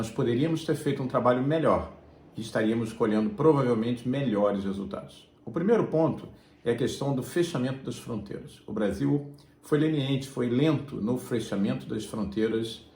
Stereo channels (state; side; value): identical; both; correlation 1.00